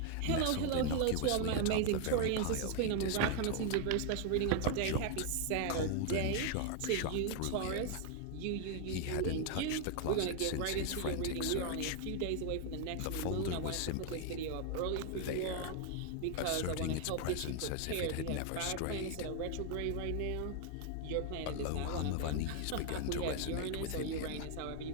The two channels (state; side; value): different; both; correlation 0.00